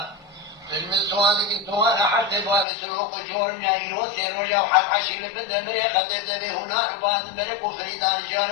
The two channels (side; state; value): right; drops out; at 2.7 s